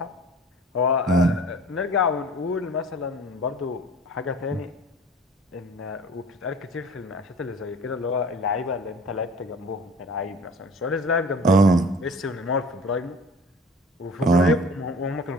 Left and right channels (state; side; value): normal; both; correlation 0.46